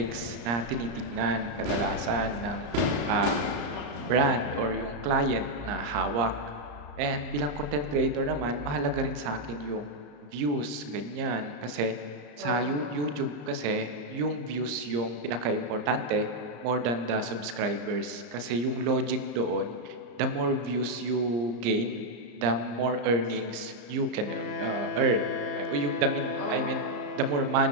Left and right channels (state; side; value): late; left; 34 ms